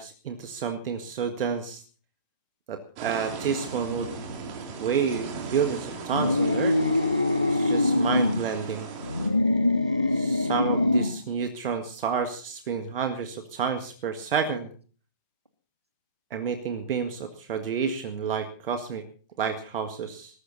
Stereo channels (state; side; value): inverted; both; correlation -0.50